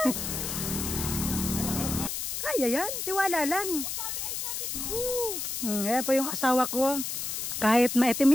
Kaya yan, tiwala lang. Ayan po yung asawa ko. Kahit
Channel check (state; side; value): noise; left; hiss, 3 dB below the sound